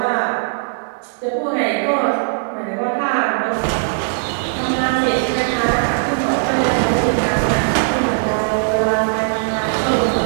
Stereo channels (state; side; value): silent; left; digital silence